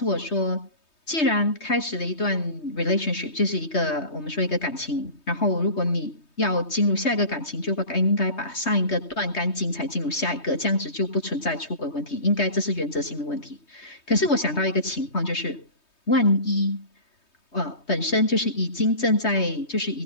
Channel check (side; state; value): right; late; 3.2 ms